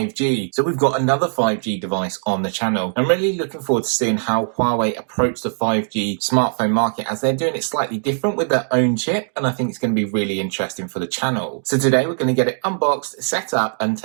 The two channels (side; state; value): left; silent; 66 dB below the other